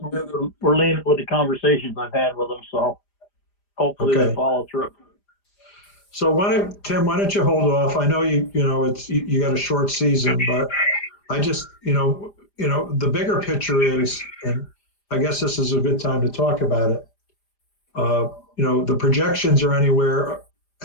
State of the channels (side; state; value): right; late; 5.0 ms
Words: we're leaning with the conversations I've had with them. So hopefully Okay. they follow through. So Tim, why don't you hold off? I know you got a short season, but I just, the bigger picture is, and I guess this is a good time to talk about it. The projections are anywhere